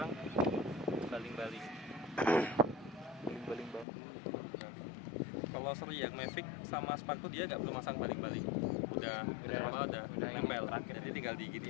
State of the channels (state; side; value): drops out; right; at 3.9 s